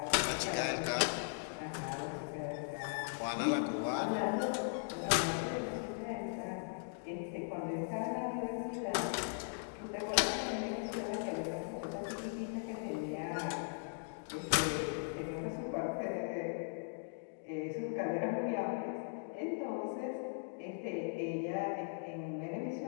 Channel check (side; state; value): right; silent; digital silence